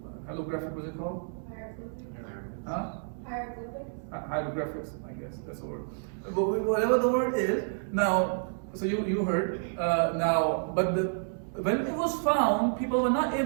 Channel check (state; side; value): silent; left; 58 dB below the other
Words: what's it called? Hieroglyphics. Huh? Hieroglyphics, I guess, that's the word. But whatever the word is, now, so you heard, now, but when it was found, people were not